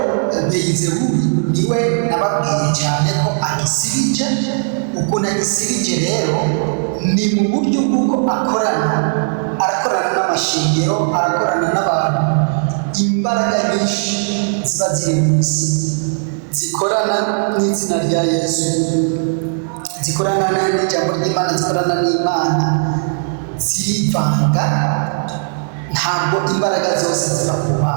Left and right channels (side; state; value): left; silent; digital silence